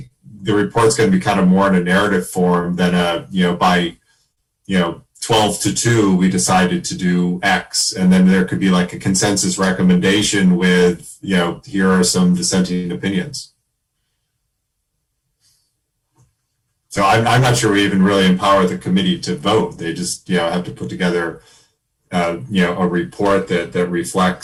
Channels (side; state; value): both; identical; correlation 1.00